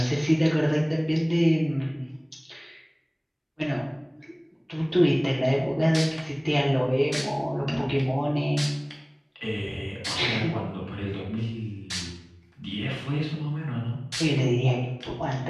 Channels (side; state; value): both; identical; correlation 1.00